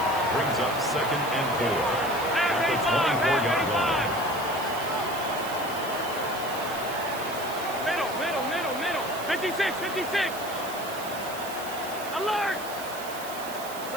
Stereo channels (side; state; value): right; noise; hiss, 12 dB below the sound